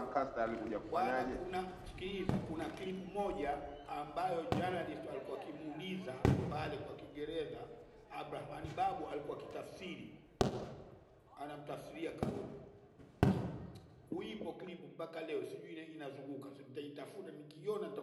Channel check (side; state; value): both; identical; correlation 1.00